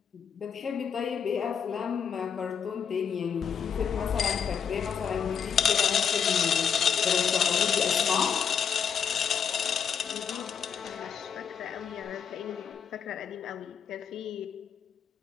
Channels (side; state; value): right; quieter; 7.4 dB